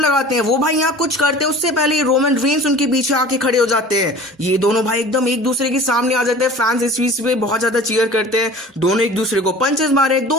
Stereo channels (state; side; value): normal; both; correlation 0.42